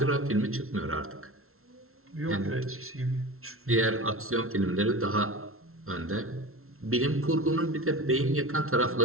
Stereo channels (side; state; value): left; late; 0.62 ms